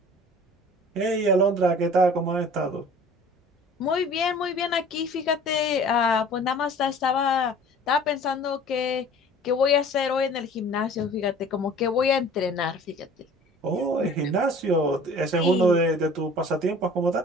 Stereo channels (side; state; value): both; normal; correlation 0.46